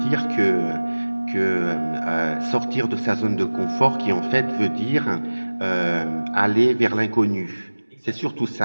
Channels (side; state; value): both; inverted; correlation -1.00